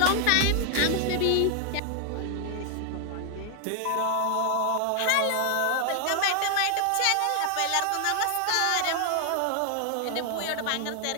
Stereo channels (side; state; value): both; different; correlation 0.00